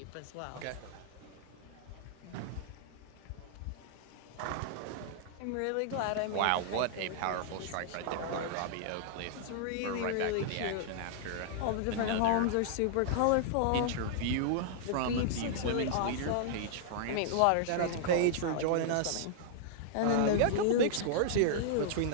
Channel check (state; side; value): different; both; correlation -0.01